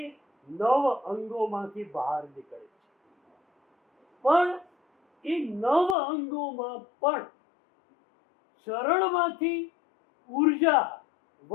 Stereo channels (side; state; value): right; drops out; at 6.0 s